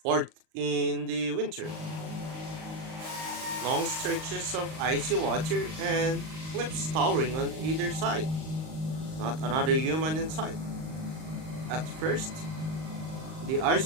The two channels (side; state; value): left; late; 38 ms